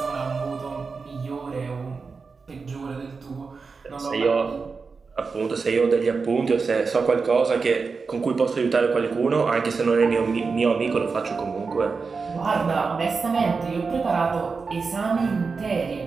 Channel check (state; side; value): quieter; left; 4.7 dB